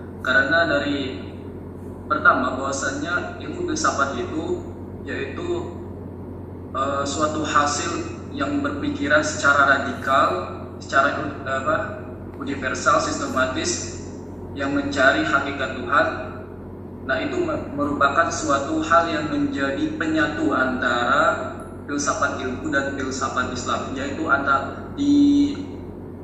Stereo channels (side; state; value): both; identical; correlation 1.00